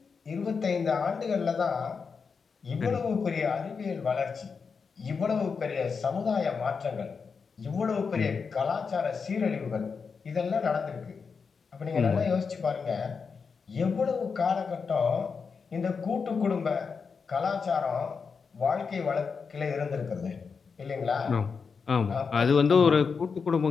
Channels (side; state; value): right; quieter; 5.4 dB